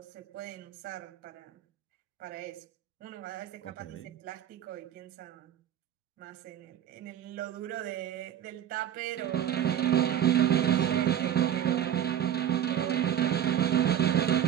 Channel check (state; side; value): quieter; left; 10.3 dB